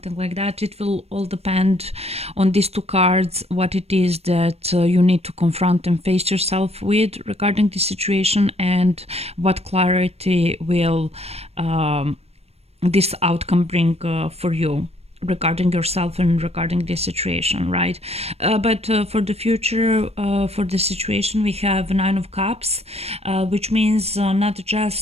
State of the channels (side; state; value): left; late; 0.30 ms